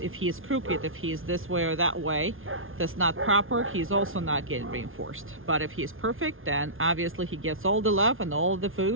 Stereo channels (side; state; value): left; late; 0.59 ms